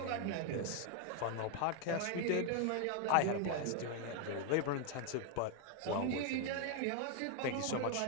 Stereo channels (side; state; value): both; different; correlation 0.00